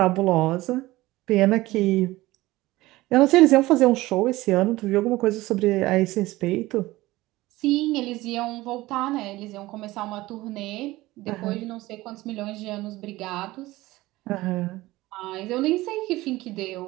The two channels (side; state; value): left; quieter; 18.5 dB